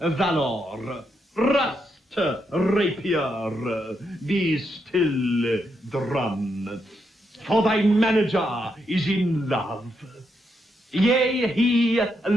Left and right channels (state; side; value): normal; both; correlation 0.81